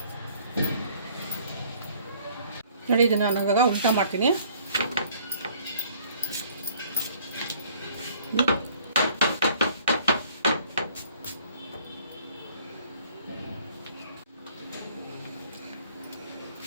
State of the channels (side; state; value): both; inverted; correlation -0.57